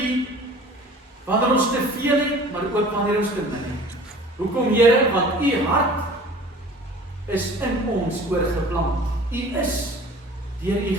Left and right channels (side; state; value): both; normal; correlation 0.46